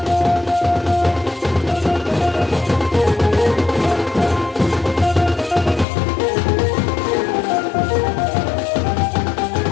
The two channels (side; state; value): right; drops out; at 5.9 s